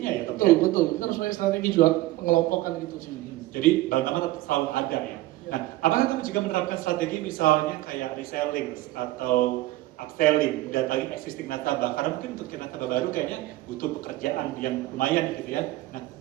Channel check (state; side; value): quieter; left; 17.3 dB